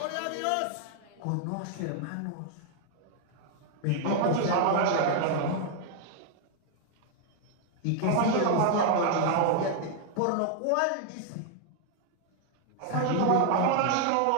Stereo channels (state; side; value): different; both; correlation 0.00